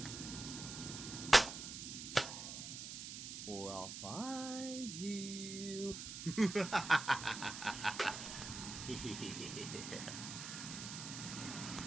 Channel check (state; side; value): noise; right; hiss, 7 dB below the sound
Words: or I'll find you.